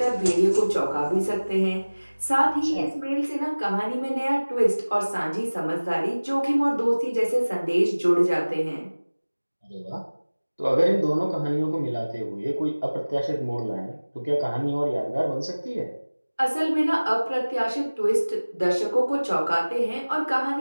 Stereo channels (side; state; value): both; inverted; correlation -1.00